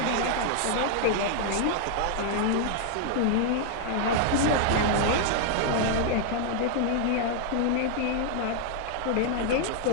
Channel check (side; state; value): both; different; correlation 0.00